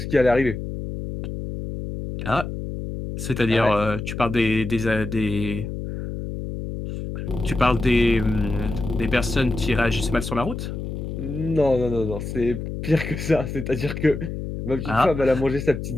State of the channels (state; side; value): noise; left; hum, 6 dB below the sound